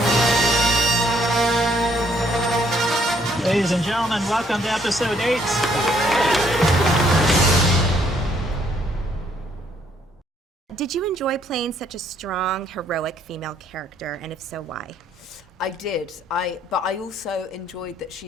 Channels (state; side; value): normal; both; correlation 0.68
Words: Ladies and gentlemen, welcome to episode 8. Did you enjoy playing such a strong, heroic female character, and if so, why? I did. But I also enjoyed that